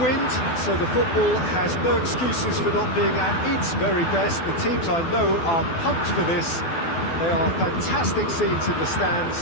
wind, so the football has no excuses for not being at its very best. The teams I know are pumped for this. They are fantastic scenes in the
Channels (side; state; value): right; late; 12 ms